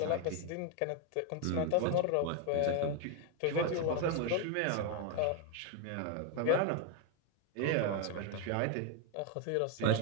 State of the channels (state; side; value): different; both; correlation 0.01